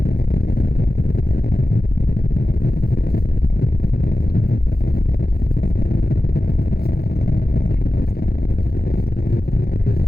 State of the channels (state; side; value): late; right; 0.45 ms